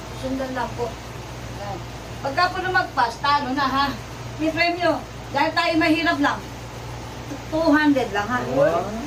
Susundan lang po. Ayan. Pagka po lumagpas, talo na ha. May premyo. Dahil tayo mahirap lang. 200 lang ha.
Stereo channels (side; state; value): both; identical; correlation 1.00